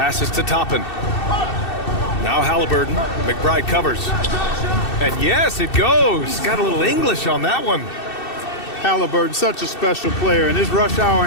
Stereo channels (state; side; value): late; right; 2.7 ms